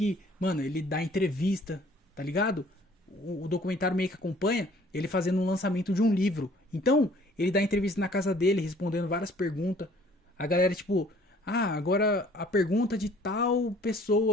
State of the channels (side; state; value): both; normal; correlation 0.56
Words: mano, ele dá entrevista, tá ligado? O documentário meio que acompanha ele fazendo um lançamento de um livro. Então, ele dá entrevista na casa dele, respondendo várias perguntas. A galera, tipo, agora a pergunta de tal